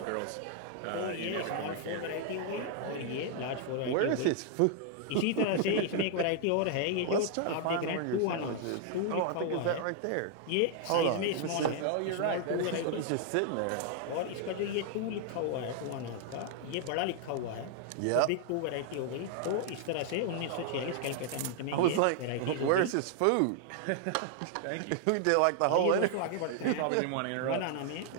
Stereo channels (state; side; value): different; both; correlation 0.00